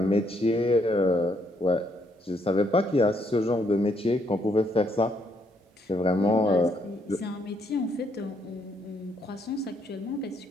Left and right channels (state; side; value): normal; both; correlation 0.72